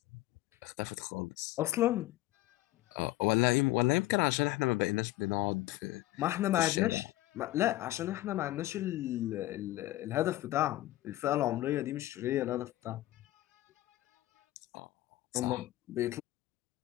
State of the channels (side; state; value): right; quieter; 16.5 dB